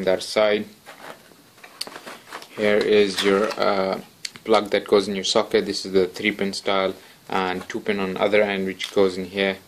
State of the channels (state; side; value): identical; both; correlation 1.00